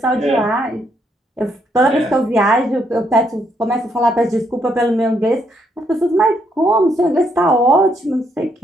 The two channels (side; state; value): both; normal; correlation 0.74